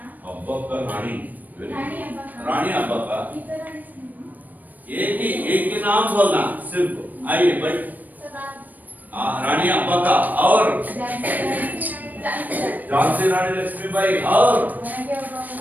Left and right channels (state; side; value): late; left; 0.084 ms